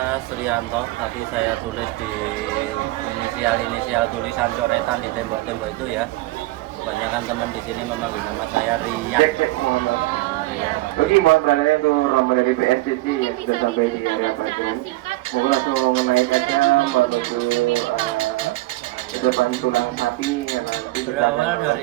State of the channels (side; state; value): left; quieter; 19.3 dB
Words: Sriyanto, tapi saya tulis di inisial tulisan coretan di tembok-tembok itu ya. Kebanyakan teman di sini memanggil nama saya Rian. Rian. Oke, mohon beralih untuk rombongan dari PSCC yang sudah sampai di area bagian. Mohon langsung menaikkannya menuju depan tulang sapi. Berawal